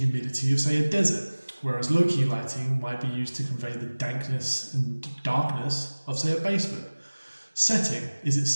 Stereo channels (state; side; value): inverted; both; correlation -1.00